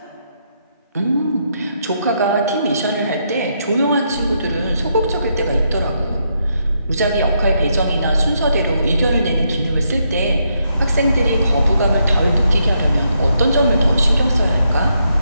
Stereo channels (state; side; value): inverted; both; correlation -0.78